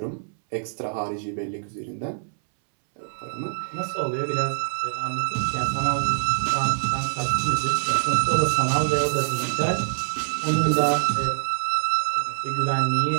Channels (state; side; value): silent; left; 62 dB below the other